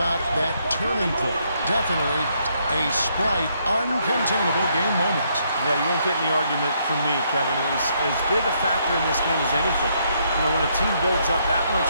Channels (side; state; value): both; inverted; correlation -0.73